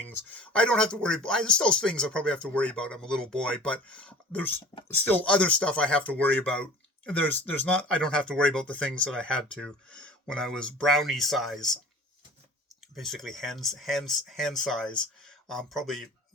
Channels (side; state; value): both; normal; correlation 0.43